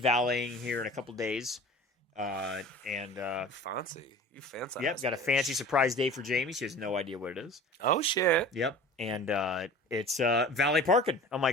here in a couple days. Fancy, you fancy. Yep, got a fancy surprise day for Jamie. She has no idea what it is. Oh shit! Yep, and it's valet parking. I'm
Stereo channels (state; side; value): normal; both; correlation 0.41